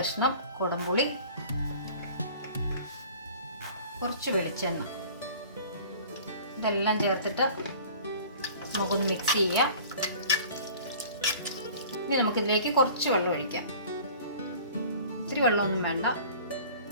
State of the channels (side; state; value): both; inverted; correlation -0.45